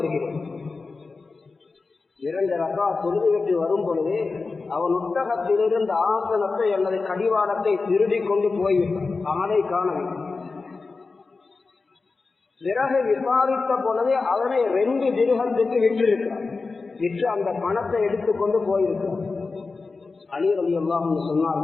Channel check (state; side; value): quieter; right; 4.1 dB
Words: 2 ரக்காத் தொழுதுவிட்டு வரும் பொழுது அவன் ஒட்டகத்திலிருந்து ஆசனத்தை அல்லது கடிவாளத்தை திருடி கொண்டு போய்விட்டான். ஆளை காணவில்லை. பிறகு விசாரித்த பொழுதே அவனை 2 திர்ஹத்துக்கு விற்றிருக்கிறான். விற்று அந்த பணத்தை எடுத்துக்கொண்டு போயிருக்கிறான். அலி ரலியல்லாஹு அன்ஹு